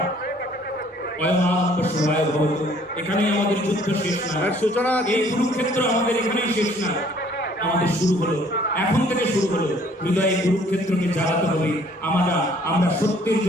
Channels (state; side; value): normal; both; correlation 0.59